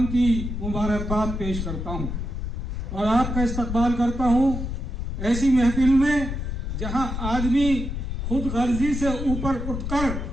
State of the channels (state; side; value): noise; left; rumble, 4 dB below the sound